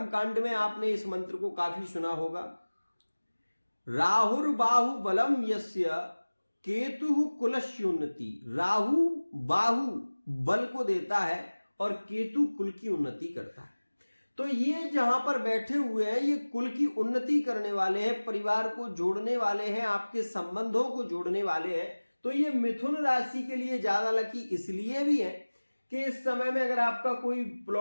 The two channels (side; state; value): both; inverted; correlation -1.00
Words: में आपने इस मंत्र को काफी सुना होगा। राहुर बाहु बलम यस्य केतु कुलस्योन्नति, राहु बाहु बल को देता है और केतु कुल की उन्नति करता है। तो ये जहां पर बैठे हुए हैं ये कुल की उन्नति करने वाले हैं, परिवार को जोड़ने वाले हैं, आपके संबंधों को जोड़ने वाले हैं। तो ये मिथुन राशि के लिए ज्यादा लकी इसलिए भी है कि इस समय में अगर आपका कोई